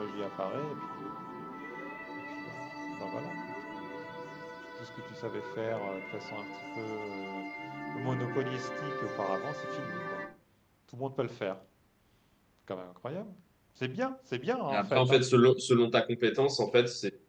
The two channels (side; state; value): both; identical; correlation 1.00